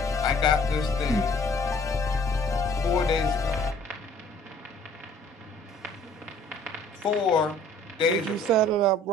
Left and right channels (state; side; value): normal; both; correlation 0.55